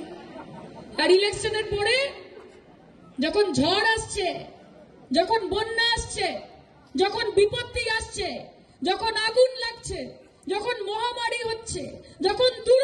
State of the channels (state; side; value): identical; both; correlation 1.00